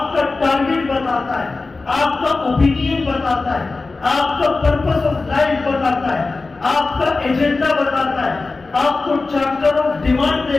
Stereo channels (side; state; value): right; quieter; 3.7 dB